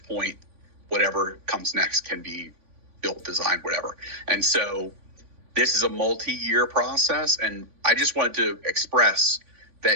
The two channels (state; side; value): late; left; 3.5 ms